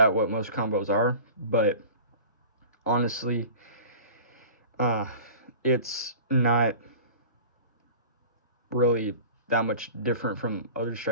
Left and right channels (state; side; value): inverted; both; correlation -0.39